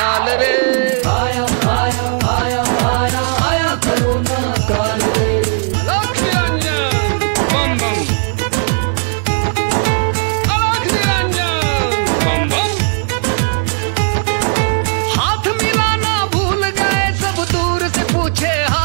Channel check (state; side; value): silent; left; 59 dB below the other